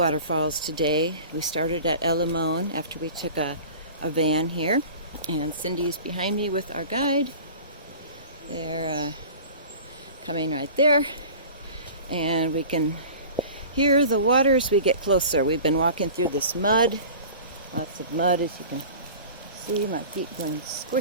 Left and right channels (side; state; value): both; inverted; correlation -0.40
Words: today. We started at Limon after we took a van here, and Cindy is behind me with our guide. They're coming right there, and we can hear the water as we get closer. We've been walking through this mud, lots of mud, as you can see. My feet going